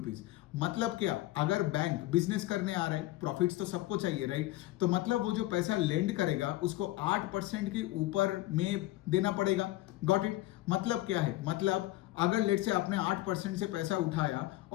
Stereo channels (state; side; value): quieter; right; 17.2 dB